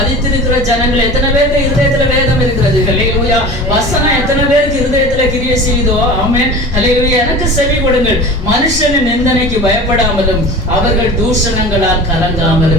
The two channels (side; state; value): both; normal; correlation 0.36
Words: ஜனங்கள், எத்தனை பேருக்கு இருதயத்துல வேதம் இருக்கிறது? ஹல்லேலூயா. வசனம் எத்தனை பேருக்கு இருதயத்துல கிரியை செய்தோ? ஆமென். ஹல்லேலூயா. எனக்கு செவி கொடுங்கள். மனுஷனின் நிந்தனைக்கு பயப்படாமலும் அவர்கள் தூஷணங்களால்